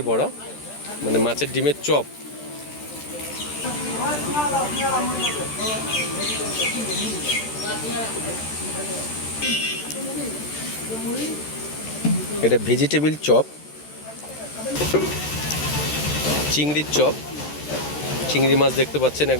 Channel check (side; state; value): right; late; 13 ms